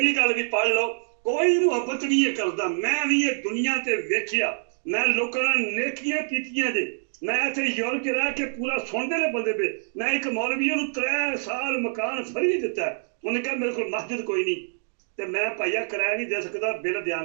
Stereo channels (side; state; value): left; silent; digital silence